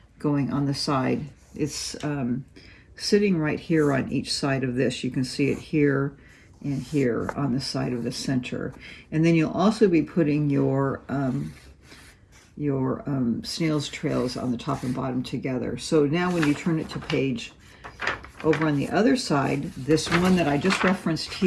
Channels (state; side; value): identical; both; correlation 1.00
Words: going on the side. It's sitting right here on each side of this. You can see it here and here on the side of the center. And then you'll also be putting your snail's trails on the top and bottom together. So now when you turn it to page over on the other side, this one that I just referenced